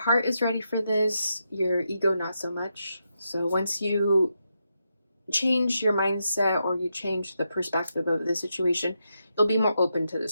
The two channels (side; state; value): both; inverted; correlation -0.84